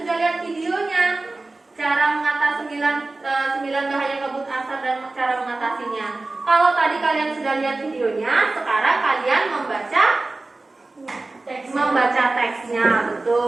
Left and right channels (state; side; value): quieter; left; 3.2 dB